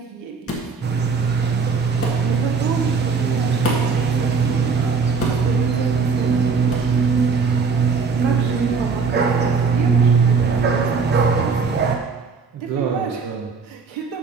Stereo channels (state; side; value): quieter; left; 5.0 dB